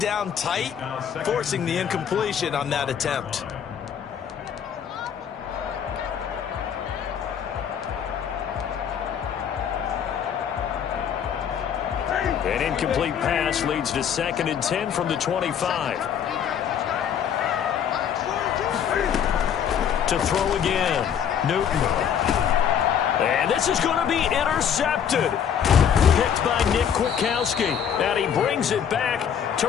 down tight, forcing the incompletion on that attempt. An incomplete pass leads to 2nd and 10 from the 25. To throw again, Newton. And this is going to be intercepted. Picked by Nick Kwiatkowski. And he brings it back to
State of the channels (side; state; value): right; quieter; 8.3 dB